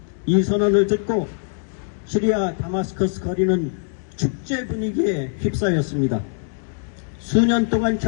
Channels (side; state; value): right; silent; digital silence